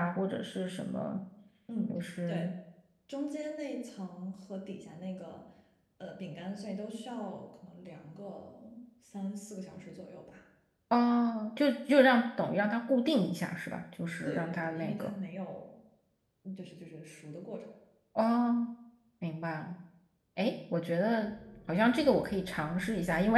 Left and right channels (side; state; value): both; identical; correlation 1.00